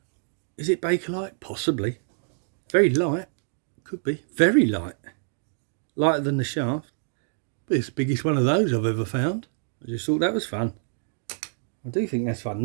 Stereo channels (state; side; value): silent; left; digital silence